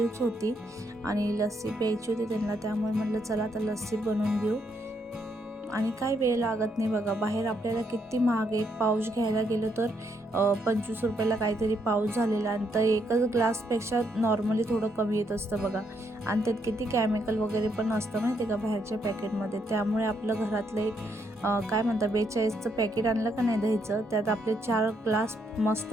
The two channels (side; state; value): both; normal; correlation 0.75